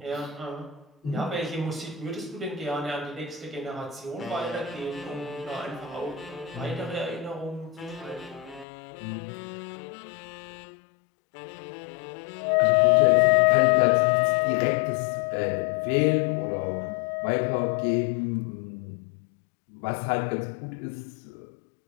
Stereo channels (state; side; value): drops out; right; at 8.7 s